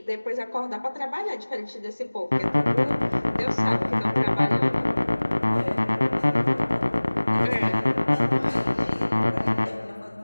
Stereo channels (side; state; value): both; inverted; correlation -1.00